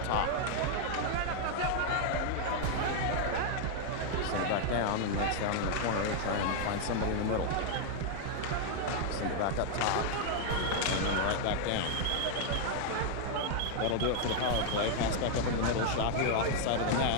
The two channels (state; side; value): different; both; correlation 0.00